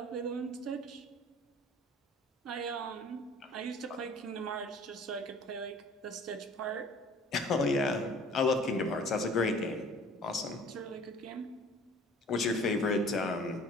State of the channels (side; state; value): both; normal; correlation 0.49